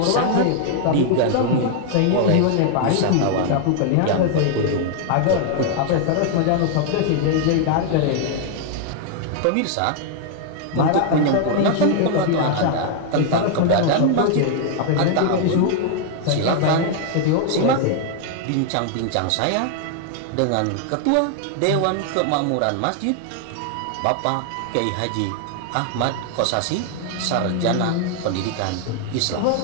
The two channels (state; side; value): different; both; correlation 0.00